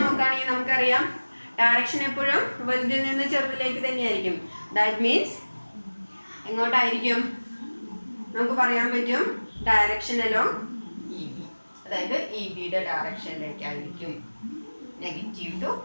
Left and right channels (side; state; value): both; inverted; correlation -1.00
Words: നോക്കുകയാണെങ്കിൽ നമുക്കറിയാം, ഡയറക്ഷൻ എപ്പോഴും വലുതിൽ നിന്ന് ചെറുതിലേക്ക് തന്നെയായിരിക്കും. ദാറ്റ് മീൻസ് എങ്ങോട്ടായിരിക്കും? നമുക്ക് പറയാൻ പറ്റും ഡയറക്ഷൻ അലോങ് EB, അതായത് EBയുടെ ഡയറക്ഷനിലേക്കായിരിക്കും, നെഗറ്റീവ് ടു